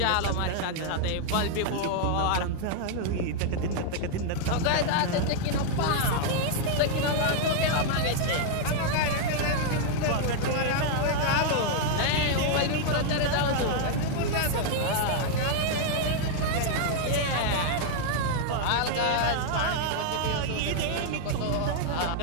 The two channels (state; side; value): different; both; correlation 0.00